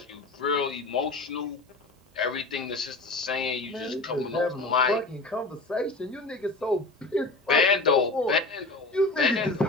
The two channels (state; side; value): quieter; right; 3.1 dB